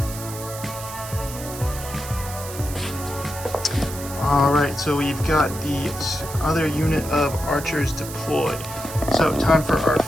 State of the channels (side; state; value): right; noise; hiss, 11 dB below the sound